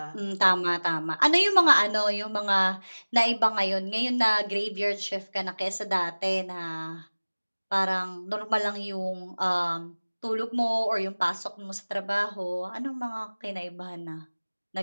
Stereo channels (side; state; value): both; inverted; correlation -1.00